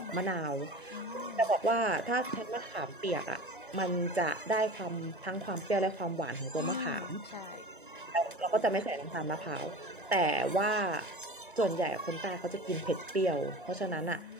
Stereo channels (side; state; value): both; normal; correlation 0.35